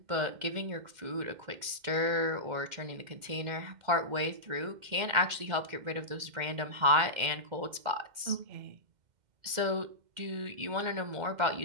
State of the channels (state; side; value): late; left; 2.1 ms